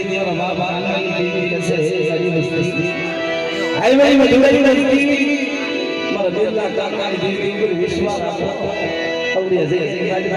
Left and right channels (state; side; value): identical; both; correlation 1.00